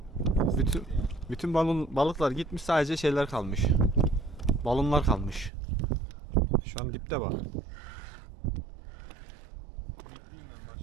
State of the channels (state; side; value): drops out; left; at 5.5 s